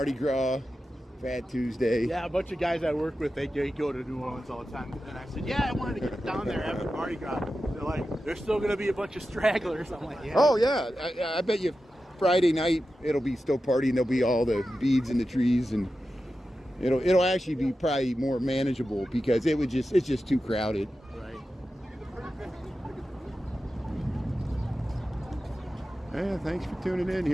Gras, Fat Tuesday. Yeah, a bunch of guys I work with, they go to New Orleans all the time. And I said, yeah, I wanted to get down there after Mardi Gras. They're like, there's still going to be a bunch of stragglers. I'm like, yeah. Oh, yeah. I bet you Friday night it'll be still partying. There'll be all the beads in the trees, and it'll actually be probably more manageable because it's just too crowded. Right. Yeah, thanks for tuning in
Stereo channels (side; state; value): both; normal; correlation 0.92